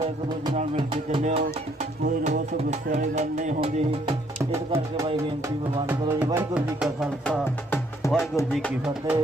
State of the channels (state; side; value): normal; both; correlation 0.67